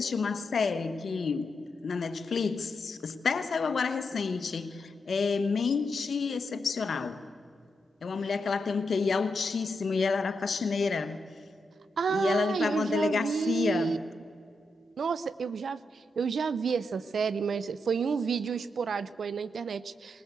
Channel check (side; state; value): both; normal; correlation 0.84